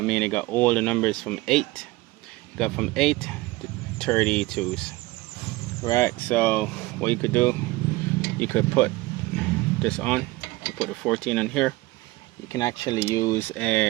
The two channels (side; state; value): left; quieter; 20.4 dB